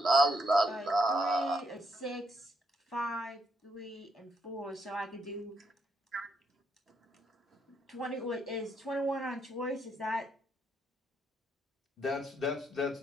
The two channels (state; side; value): normal; both; correlation 0.76